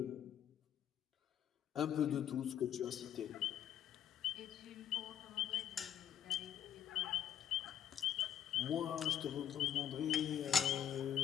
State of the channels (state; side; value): quieter; right; 9.7 dB